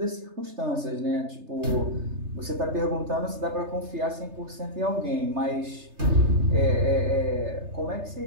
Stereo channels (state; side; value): late; left; 3.3 ms